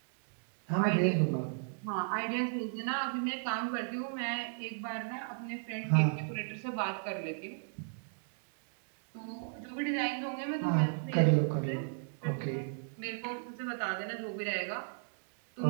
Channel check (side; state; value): left; silent; digital silence